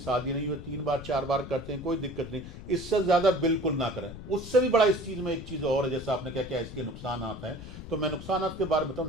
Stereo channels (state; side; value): noise; left; rumble, 12 dB below the sound